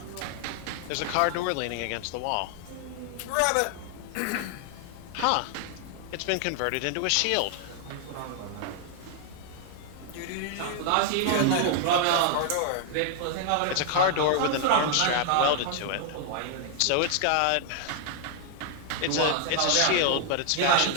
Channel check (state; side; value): different; both; correlation 0.00